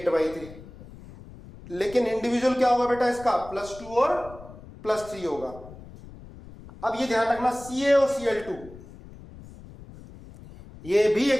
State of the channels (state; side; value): noise; left; rumble, 18 dB below the sound